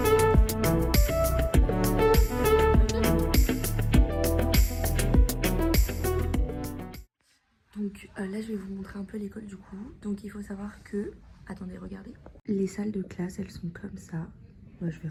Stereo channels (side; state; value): both; identical; correlation 1.00